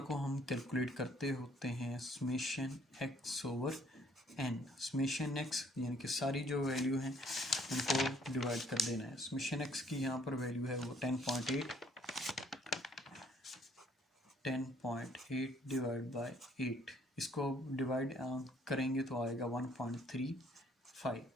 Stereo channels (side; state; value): both; normal; correlation 0.63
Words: को हम कैलकुलेट करते होते हैं summation x over n. Summation x यानी कि सारी जो वैल्यू हैं उनको डिवाइड कर देना है। समेशन एक्स की यहाँ पर वैल्यू है वो 10.8 डिवाइड बाय 8, इसको डिवाइड करेंगे तो आएगा 1.35।